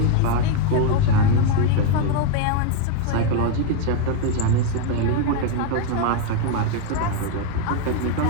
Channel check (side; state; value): both; different; correlation 0.01